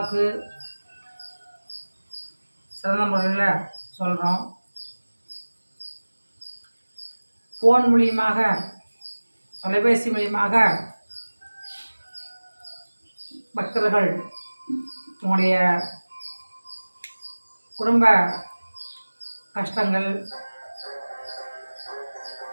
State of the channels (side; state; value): both; inverted; correlation -1.00